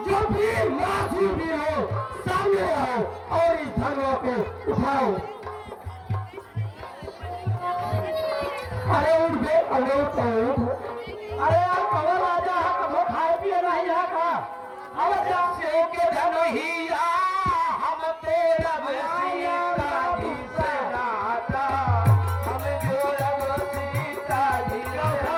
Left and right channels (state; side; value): identical; both; correlation 1.00